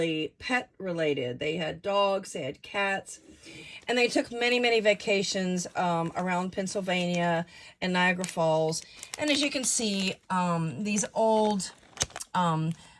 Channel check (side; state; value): both; identical; correlation 1.00